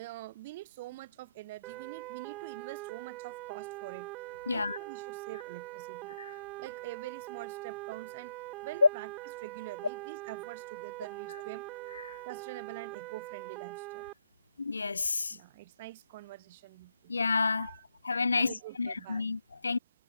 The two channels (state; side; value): inverted; both; correlation -0.76